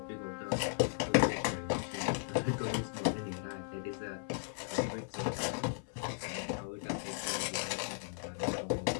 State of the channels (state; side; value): silent; right; 53 dB below the other